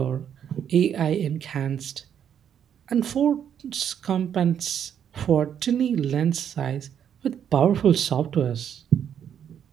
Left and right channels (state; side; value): quieter; left; 8.9 dB